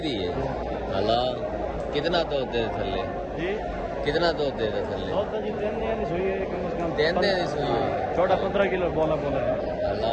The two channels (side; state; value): both; identical; correlation 1.00